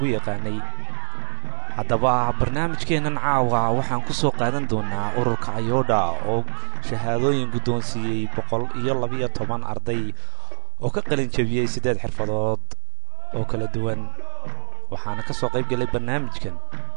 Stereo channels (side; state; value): left; silent; 63 dB below the other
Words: yaqaanay. haddaba barnaamijkeenan caawa waxaan ku soo qaadan doonaa ururka Ayoodha oo shahaadooyin guddoonsiiyay 112 arday oo ka qalin jabiyay 8 xirfadood oo kala duwan. waxaana ka soo qayb galay barnaamijkan